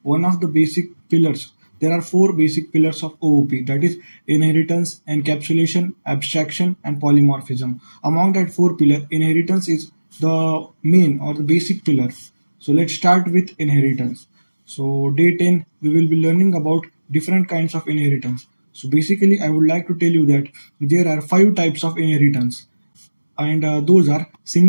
one of the basic pillars. There are four basic pillars of OOP, that is inheritance, encapsulation, abstraction, and polymorphism. Among that four pillar, inheritance is the main or the basic pillar. So let's start with inheritance. So day 10 we will be learning about different kinds of inheritance. So basically I would like to tell you that there are 5 types of inheritance, and those are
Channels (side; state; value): both; inverted; correlation -1.00